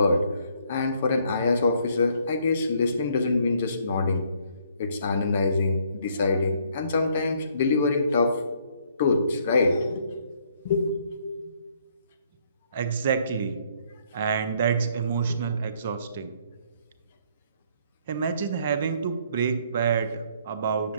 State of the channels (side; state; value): both; inverted; correlation -0.66